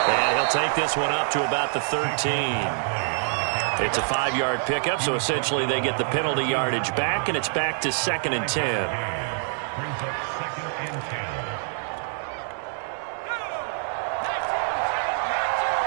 And he'll take this one up to about the 13. It's a 5-yard pickup, so essentially they get the penalty yardage back, and it's back to 2nd and 10.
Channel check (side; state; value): left; silent; 61 dB below the other